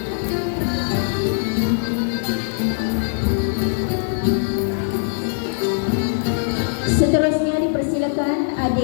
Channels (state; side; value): silent; right; digital silence